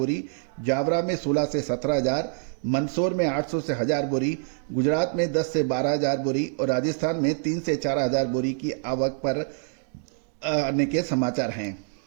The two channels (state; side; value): silent; left; digital silence